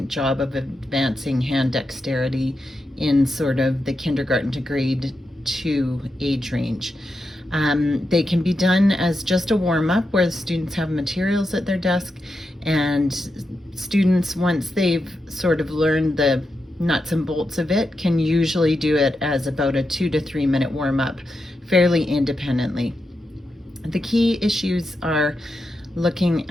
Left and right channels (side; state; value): both; normal; correlation 0.87